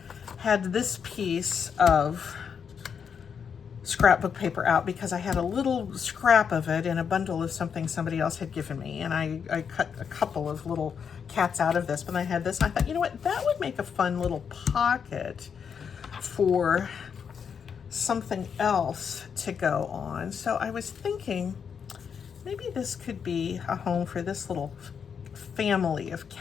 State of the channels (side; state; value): right; quieter; 6.9 dB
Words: had this piece of scrapbook paper out because I had a little scrap of it in a bundle of something somebody else had given me, and I cut a couple of little cats out of this, but I had this, and I thought, you know what, that would make a fun little pocket for something else to go on. So I was thinking maybe this could be a home for this little family of